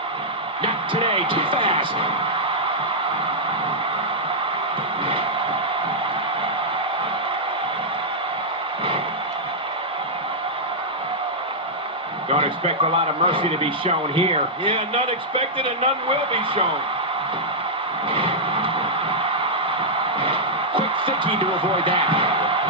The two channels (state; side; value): normal; both; correlation -0.08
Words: Not today, too fast. Don't expect a lot of mercy to be shown here. Yeah, none expected and none will be shown. Quick thinking to avoid that.